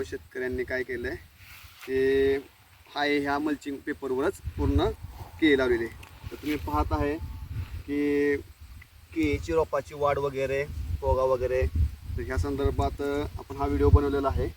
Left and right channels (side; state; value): both; identical; correlation 1.00